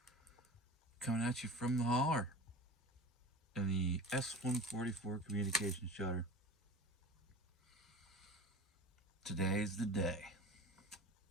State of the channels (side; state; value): both; normal; correlation 0.36